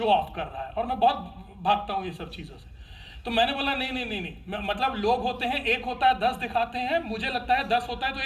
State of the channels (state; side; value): identical; both; correlation 1.00